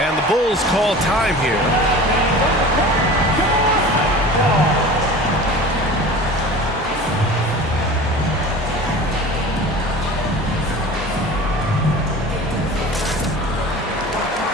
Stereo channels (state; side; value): normal; both; correlation 0.38